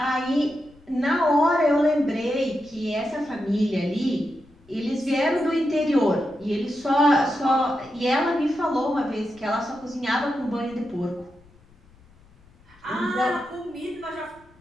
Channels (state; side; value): noise; left; rumble, 28 dB below the sound